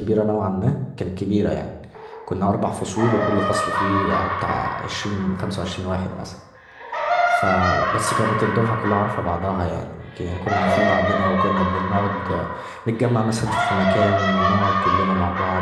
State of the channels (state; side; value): identical; both; correlation 1.00